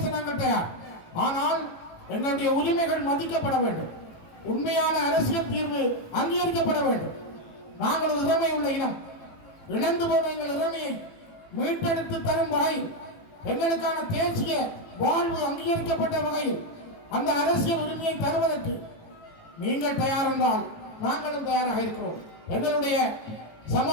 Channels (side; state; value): right; late; 18 ms